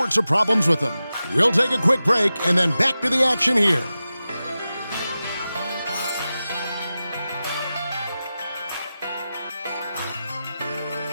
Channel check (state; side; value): inverted; both; correlation -0.93